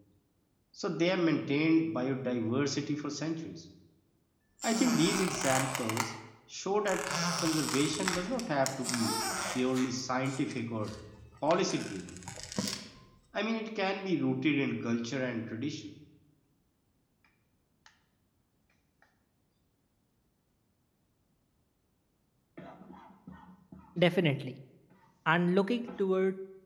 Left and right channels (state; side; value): identical; both; correlation 1.00